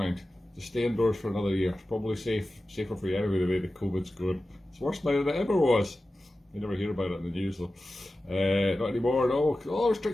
Just stay indoors for another year. It's probably safer for you anyway, the way the COVID's going. It's worse now than it ever was. You never hear about it in the news though. Not anymore, no. All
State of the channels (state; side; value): normal; both; correlation 0.94